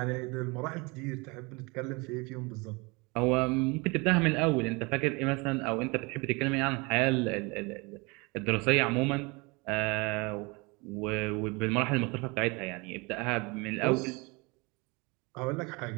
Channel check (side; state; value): left; quieter; 27.3 dB